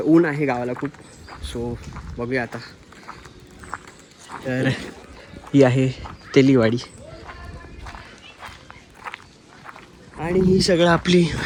ऊन आहे गावाला खूप. सो बघूया आता. तर ही आहे तेलीवाडी आणि ही सगळं आपली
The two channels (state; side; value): identical; both; correlation 1.00